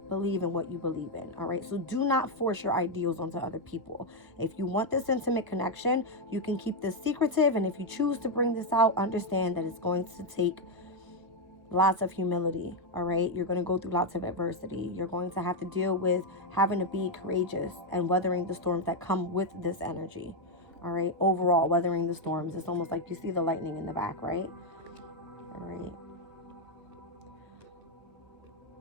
believe in what you believe in. All right. So do not force your ideals onto other people. If you want this intimate connection, you can keep this secretive. And if you choose to bring this out, understand that it's going to take lots of humility, all right? You're going to go through lots of adversity. You're going to have to deal with having to be courageous and weathering the storms that come with this energy, all right? Overall, weathering the storms. It's almost like you see the lightning in the back, right? All right.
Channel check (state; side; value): late; left; 1.3 ms